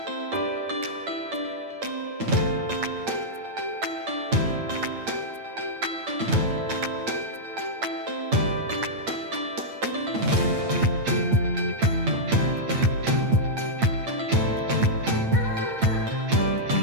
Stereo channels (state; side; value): late; left; 8.8 ms